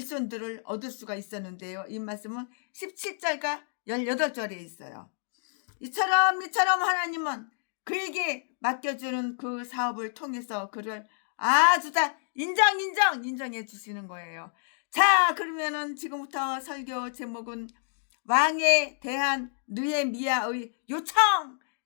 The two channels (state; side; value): silent; right; digital silence